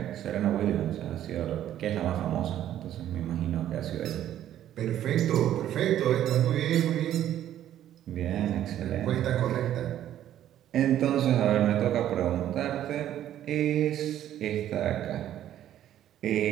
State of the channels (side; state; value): left; quieter; 11.6 dB